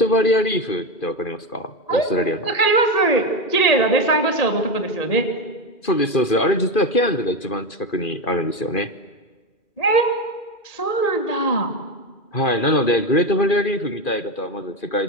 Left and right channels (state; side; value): late; right; 2.5 ms